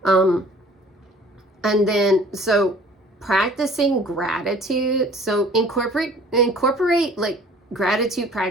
And then, so practicing gratitude. So incorporate like gratitude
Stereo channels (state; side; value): normal; both; correlation 0.50